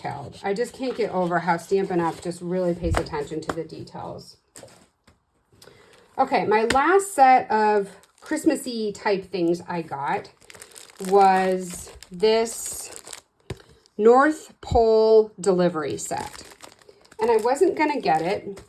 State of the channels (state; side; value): identical; both; correlation 1.00